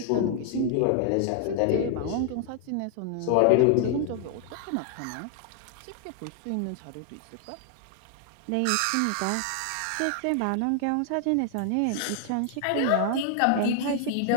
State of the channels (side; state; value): both; different; correlation 0.00